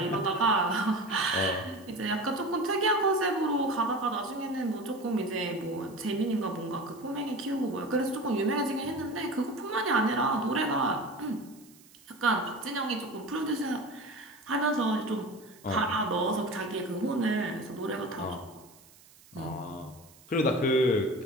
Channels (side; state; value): right; noise; hiss, 25 dB below the sound